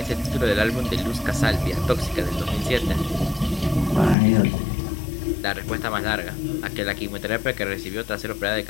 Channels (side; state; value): right; drops out; at 4.2 s